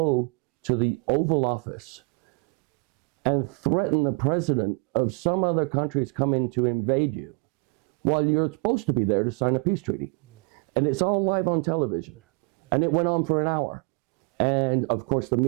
to the Oval Office and threaten the president of some other countries coming to invade you while you're supposed to be there to sign a peace treaty. And it's all live on television. And it went on for an hour. And of course the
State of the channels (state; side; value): quieter; left; 32.3 dB